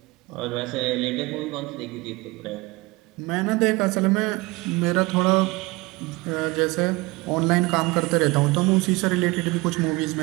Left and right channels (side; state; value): left; quieter; 23.4 dB